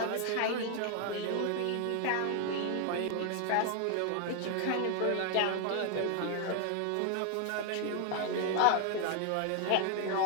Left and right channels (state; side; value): different; both; correlation 0.00